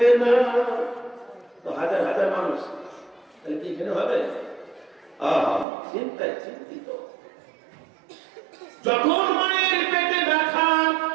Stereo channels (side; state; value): left; drops out; at 5.7 s